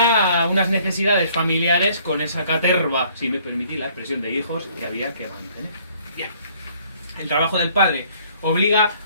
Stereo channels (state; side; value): inverted; both; correlation -0.60